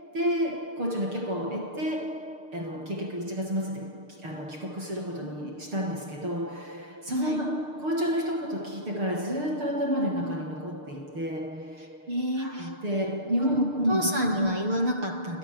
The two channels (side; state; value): left; late; 6.7 ms